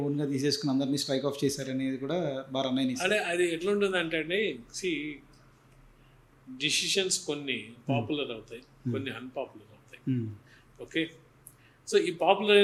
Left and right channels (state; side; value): identical; both; correlation 1.00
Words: ఓన్గా తీసేసుకుని అందరినీ స్ట్రైక్ ఆఫ్ చేశారనేది కూడా బాగా అన్నయ్య. అదే అది ఎట్లుంటుంది అంటే అండి, డిసిషన్స్ కొన్ని పాపులర్ అవుతాయి, కొన్ని అన్పాపులర్ అవుతాయి. ఓకే, సో ఈ పాపులర్